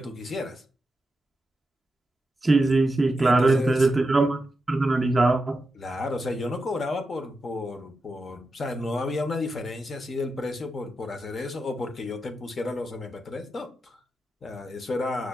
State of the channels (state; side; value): normal; both; correlation 0.88